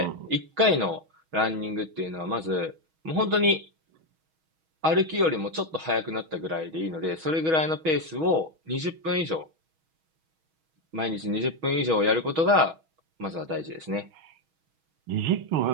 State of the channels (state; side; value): late; left; 6.3 ms